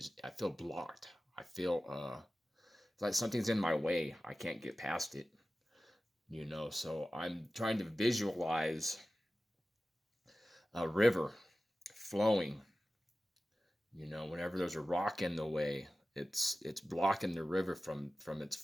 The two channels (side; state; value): both; normal; correlation 0.95